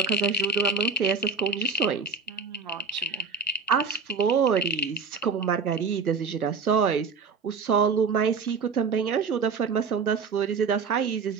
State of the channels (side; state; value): left; quieter; 5.0 dB